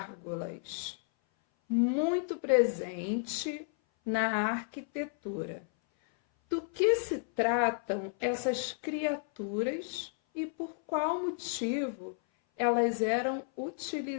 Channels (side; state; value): right; silent; 56 dB below the other